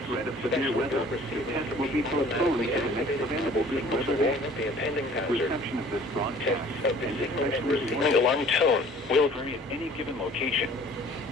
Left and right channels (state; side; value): normal; both; correlation 0.51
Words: threat of severe weather, the test will be postponed to the next available good weather day. Reception of this broadcast and especially the alarm tone will vary at any given location.